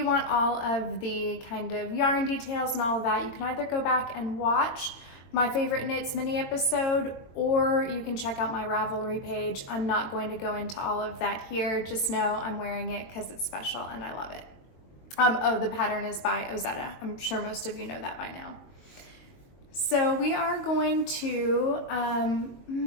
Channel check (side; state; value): right; late; 22 ms